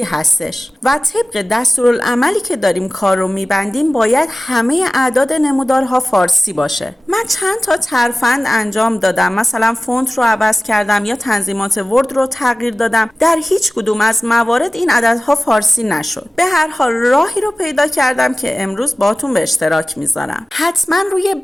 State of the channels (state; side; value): normal; both; correlation 0.96